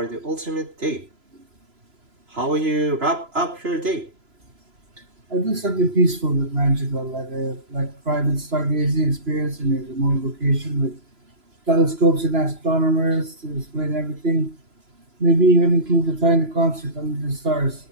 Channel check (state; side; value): late; left; 3.0 ms